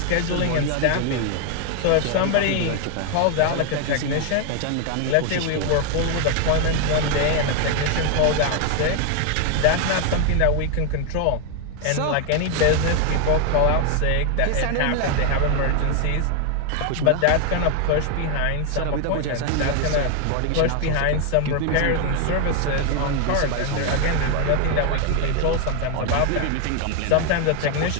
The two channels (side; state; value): both; different; correlation 0.00